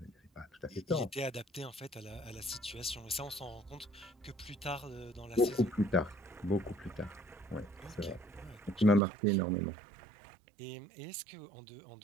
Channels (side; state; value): left; drops out; at 9.0 s